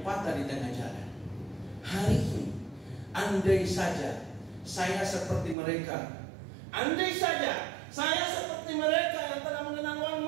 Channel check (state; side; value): drops out; left; at 5.6 s